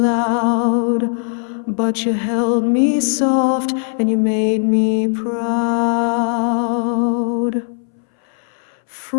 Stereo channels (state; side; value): silent; right; 65 dB below the other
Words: loud, but you held me soft and you made me proud.